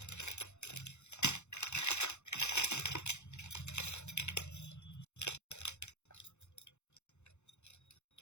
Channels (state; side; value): late; right; 0.82 ms